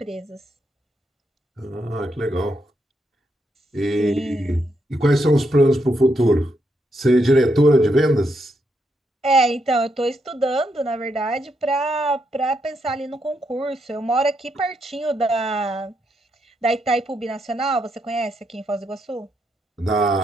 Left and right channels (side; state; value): both; normal; correlation 0.80